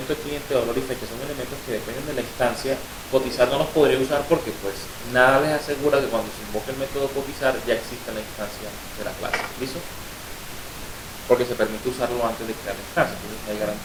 de cliente, valor y fecha son elementos que dependen de la instancia, cotizar no los podría usar porque pues nada les asegura que cuando se invoque el método cotizar ya exista la instancia de la clase. ¿Listo? Porque se permite usarlo antes de crear la instancia, entonces no hay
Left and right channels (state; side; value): identical; both; correlation 1.00